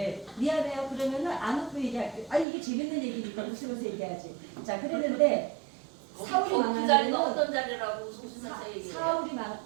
미안해요. 그러면은 안 웃고 얘기할게요. 아니, 이게 재밌는 얘기니까 웃으면서 얘기하지. 자, 그랬는데 사울이 그 망한 자리가 거는 어떤 자리라고 웃으면서 얘기해요? 사울이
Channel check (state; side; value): drops out; left; at 2.5 s